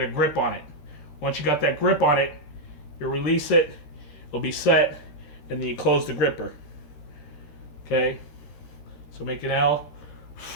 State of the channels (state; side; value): late; right; 13 ms